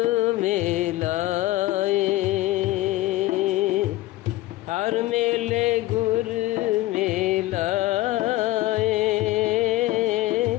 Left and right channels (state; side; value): quieter; right; 17.1 dB